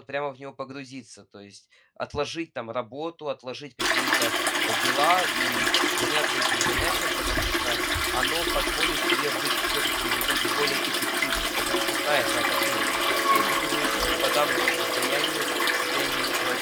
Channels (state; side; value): identical; both; correlation 1.00